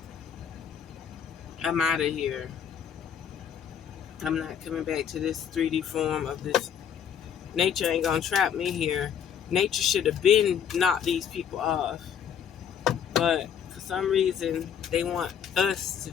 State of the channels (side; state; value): right; quieter; 8.4 dB